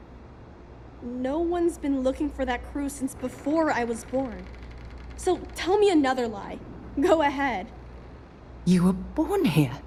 No one's been looking for that crew since before I was born. So tell me another lie. Go ahead. You were born here?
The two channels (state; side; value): identical; both; correlation 1.00